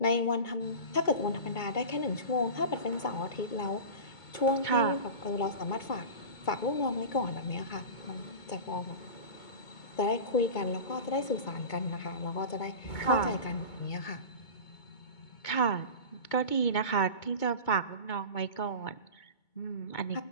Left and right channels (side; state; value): right; late; 2.2 ms